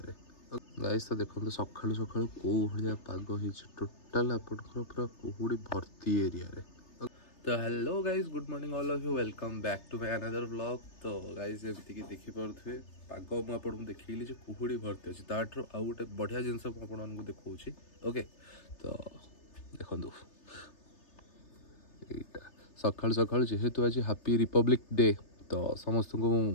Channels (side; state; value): right; late; 3.3 ms